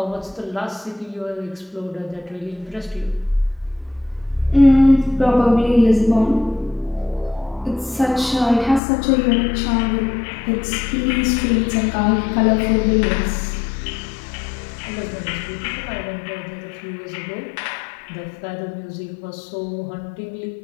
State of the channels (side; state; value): right; drops out; at 8.8 s